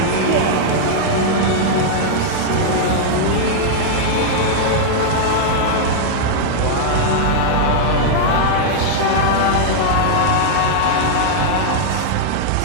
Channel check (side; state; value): both; different; correlation -0.01